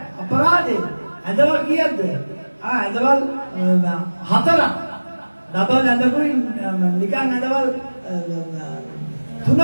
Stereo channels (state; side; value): inverted; both; correlation -1.00